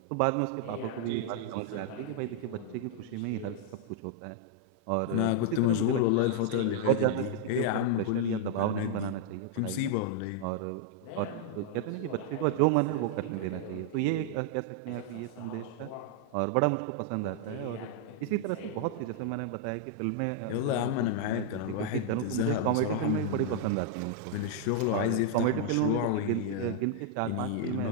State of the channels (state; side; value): different; both; correlation -0.01